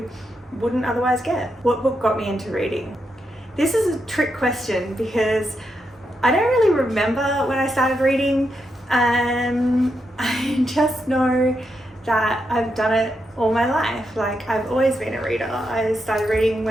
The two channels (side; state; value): both; normal; correlation 0.83